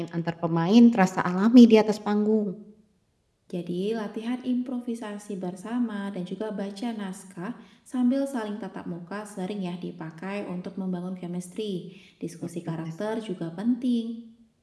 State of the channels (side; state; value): both; identical; correlation 1.00